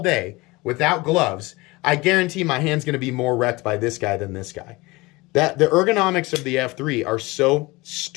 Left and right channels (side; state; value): right; quieter; 22.6 dB